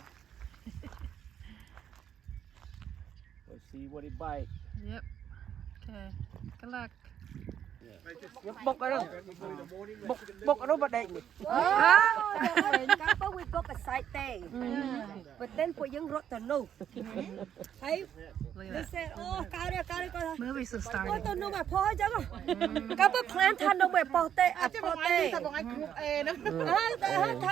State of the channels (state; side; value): quieter; left; 9.4 dB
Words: Let's see what it bite. Yep. Okay. Good luck. Bốc ở đâu? Bốc ở đâu mà đệm. Couple we book a site day, but then for young rot to know. Hey, Look they at that. said, oh, cao đi. Movies have Ôi started. tôi nuôi mà phô chứ mà. Couple plan than nuôi phô tê, à phô tê. Than